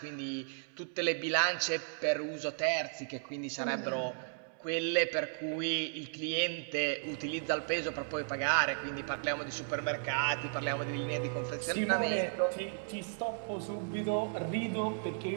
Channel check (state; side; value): silent; left; digital silence